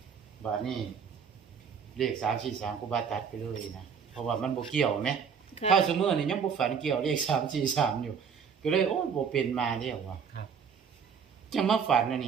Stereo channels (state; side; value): quieter; left; 6.6 dB